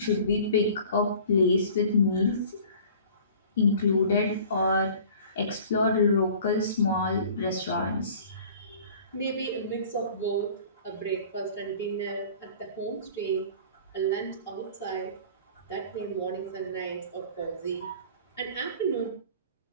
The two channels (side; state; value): both; inverted; correlation -0.46